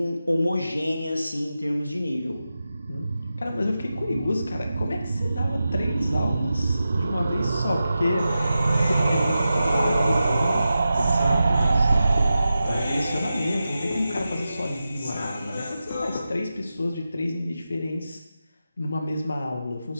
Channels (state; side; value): inverted; both; correlation -0.91